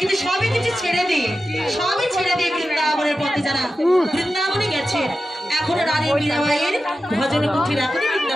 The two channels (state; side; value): normal; both; correlation 0.92